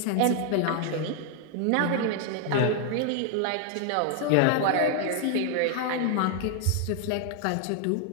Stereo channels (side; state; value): both; different; correlation 0.00